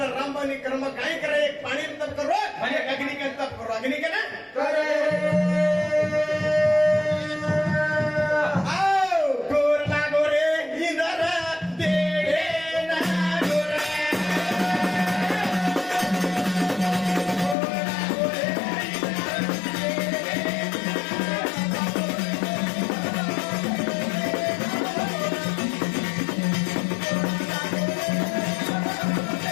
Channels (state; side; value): drops out; right; at 17.6 s